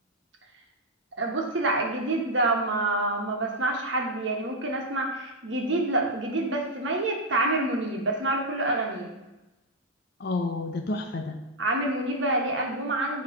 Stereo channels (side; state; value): both; normal; correlation 0.00